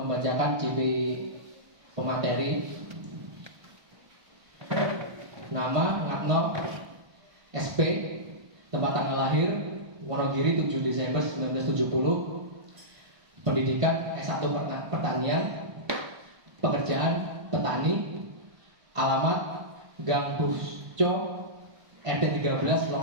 CV pemateri. Nama Ngatno, SP, tempat tanggal lahir Wonogiri 7 Desember 1970, pendidikan S1 Pertanian, pekerjaan petani, alamat Gang Busco, RT 13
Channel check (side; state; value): left; late; 1.2 ms